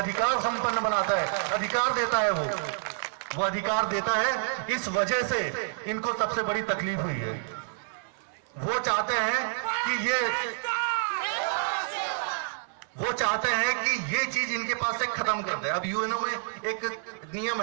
संपन्न बनाता है, अधिकार देता है। वो अधिकार देता है। इस वजह से इनको सबसे बड़ी तकलीफ हुई है। वो चाहते हैं कि ये चीज इनके पास से खत्म कर दे। अब यूएनओ में एक नियम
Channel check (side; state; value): left; silent; 57 dB below the other